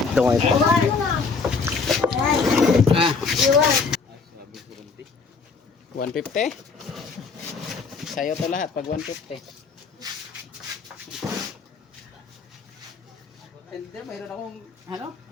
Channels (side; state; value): right; quieter; 4.8 dB